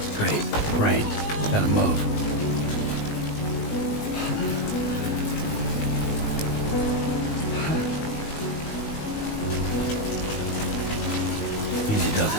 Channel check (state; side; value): late; right; 19 ms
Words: Great. Rain. Gotta move. Easy does